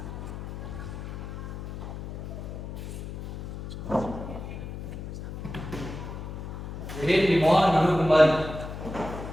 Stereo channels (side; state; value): left; noise; hum, 8 dB below the sound